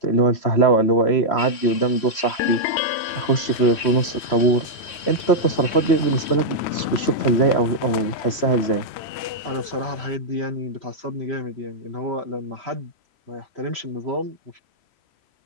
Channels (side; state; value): right; late; 3.1 ms